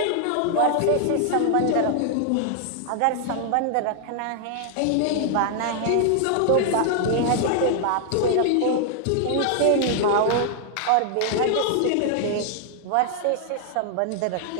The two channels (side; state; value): both; different; correlation 0.00